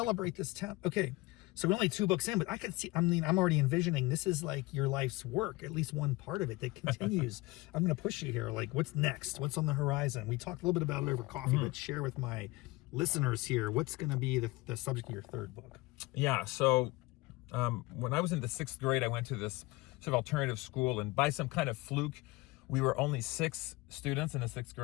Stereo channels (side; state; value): right; quieter; 22.0 dB